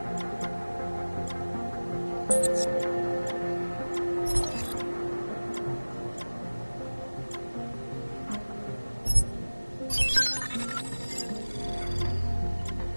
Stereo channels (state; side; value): inverted; both; correlation -1.00